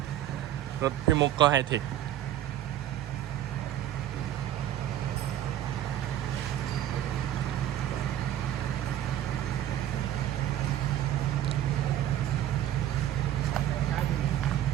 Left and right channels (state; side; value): quieter; left; 11.9 dB